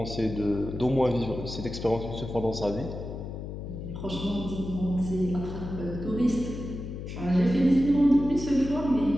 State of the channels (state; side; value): noise; left; hum, 8 dB below the sound